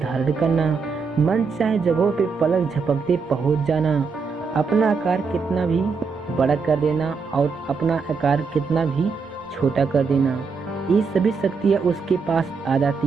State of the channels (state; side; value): quieter; left; 5.1 dB